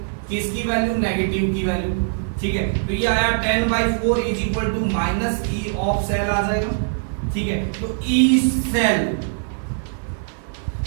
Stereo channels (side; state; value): left; silent; 64 dB below the other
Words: किसकी वैल्यू नेगेटिव की वैल्यू, ठीक है। तो ये आया 10/4 is equal to minus E of cell आ जाएगा, ठीक है। तो ई सेल